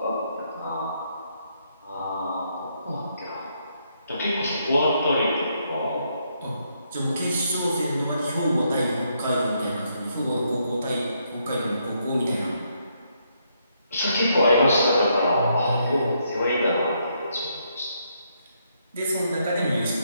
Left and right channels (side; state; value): both; inverted; correlation -0.75